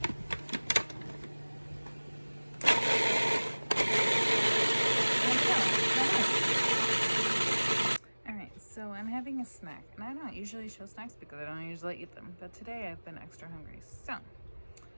So I'm having a snack, and I don't usually show snacks because I don't usually eat them, but today I've been extra hungry. So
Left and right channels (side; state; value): both; inverted; correlation -1.00